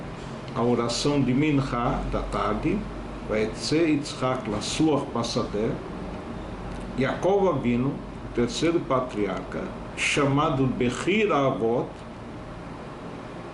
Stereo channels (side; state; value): both; identical; correlation 1.00